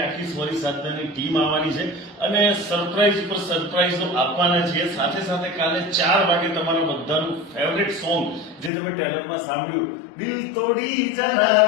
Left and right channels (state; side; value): drops out; right; at 8.7 s